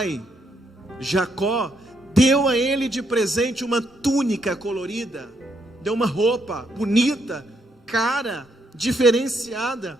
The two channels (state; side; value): normal; both; correlation 0.75